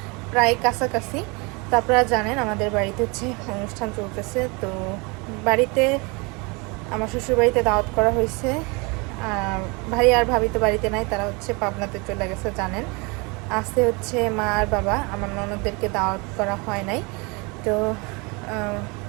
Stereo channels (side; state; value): left; quieter; 28.9 dB